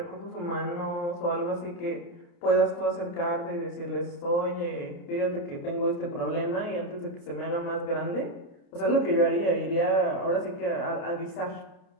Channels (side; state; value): right; late; 29 ms